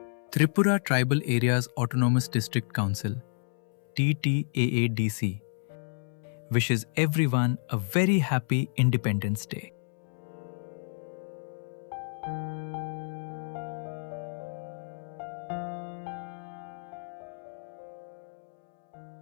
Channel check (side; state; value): right; silent; 58 dB below the other